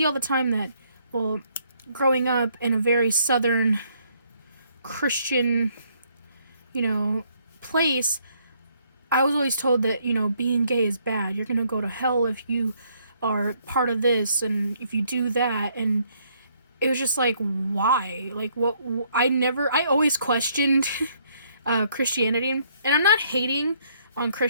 all the time that, well, growing up in a very southern Christian, you know, place, I was always told that, you know, being gay is bad. You're gonna go to hell if you are part of this and if you do that. And it was just like, why? Like, what? I always questioned Christianity. And I'm not hating on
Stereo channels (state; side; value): inverted; both; correlation -0.68